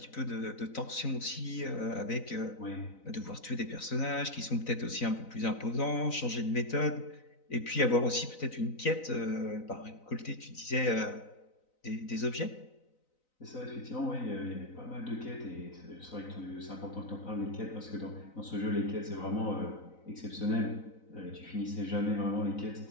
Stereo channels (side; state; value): right; late; 4.0 ms